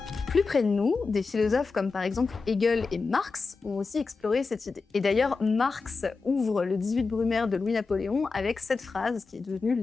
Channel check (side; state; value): right; quieter; 4.4 dB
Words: Plus près de nous, des philosophes comme par exemple Hegel et Marx ont aussi exploré cette idée. Et d'ailleurs, Marx ouvre le 18 Brumaire de Louis-Napoléon avec cette phrase qui est devenue